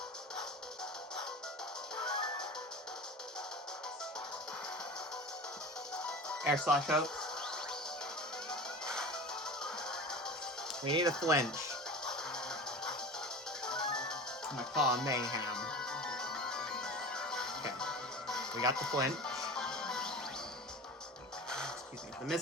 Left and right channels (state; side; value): normal; both; correlation 0.34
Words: Air Slash out. We need a flinch. I'm gonna call mayhem. Okay. We got the flinch. Excuse me. The miss